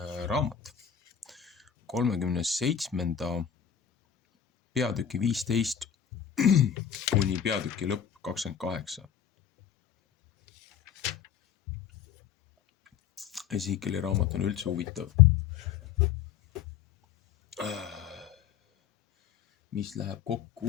raamat 37. peatüki 15 kuni peatüki lõpp 28. Ezekieli raamat on üldse huvitav. Mis läheb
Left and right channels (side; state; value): right; quieter; 8.6 dB